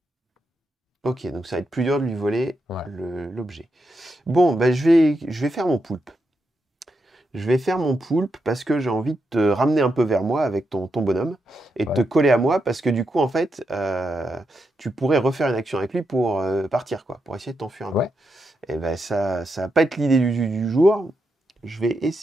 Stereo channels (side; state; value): both; normal; correlation 0.84